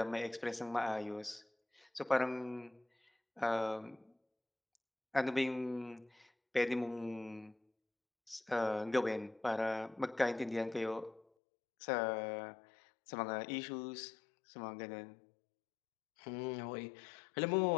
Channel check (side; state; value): right; drops out; at 11.2 s